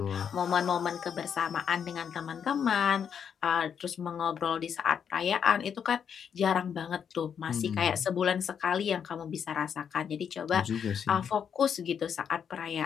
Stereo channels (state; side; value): quieter; right; 7.6 dB